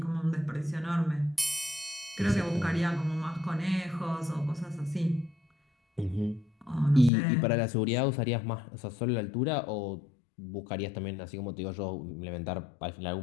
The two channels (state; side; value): drops out; right; at 7.1 s